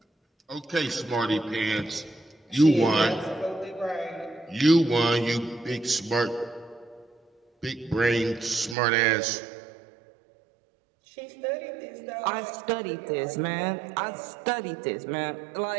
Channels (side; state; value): left; drops out; at 8.8 s